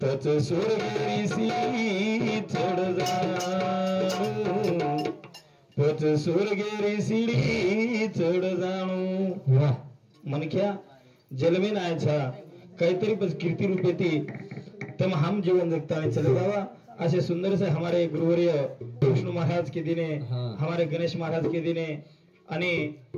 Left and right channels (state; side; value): identical; both; correlation 1.00